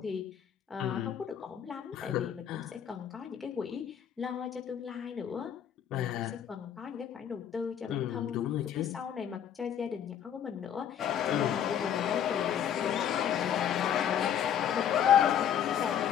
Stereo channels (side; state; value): right; quieter; 9.2 dB